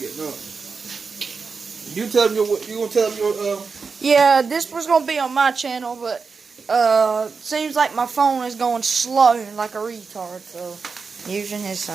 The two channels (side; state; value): left; quieter; 5.0 dB